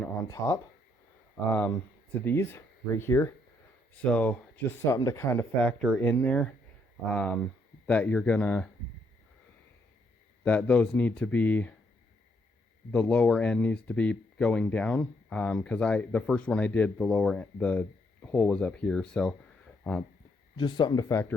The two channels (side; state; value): both; normal; correlation 0.73